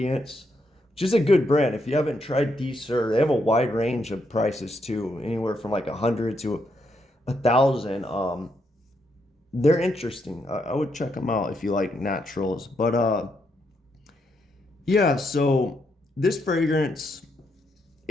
which is a good brand. If you haven't tried D Sur, they have a wide range of prices too, anywhere from like 100 to 1,000. They're interesting. I would check them out if you like naturals. But yeah, so this fragrance,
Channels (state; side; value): normal; both; correlation 0.78